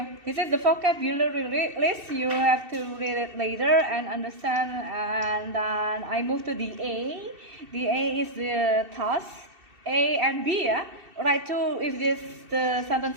This is the vocabulary list. You have to read it later and understand. And then I move to the A. The A is the task. A and B, yeah. Write two if the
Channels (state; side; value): late; left; 2.7 ms